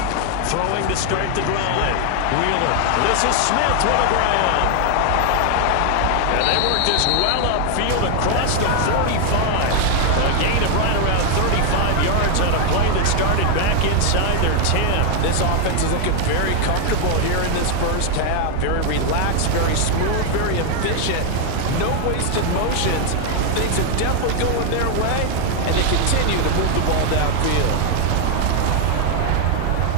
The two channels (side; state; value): both; different; correlation 0.00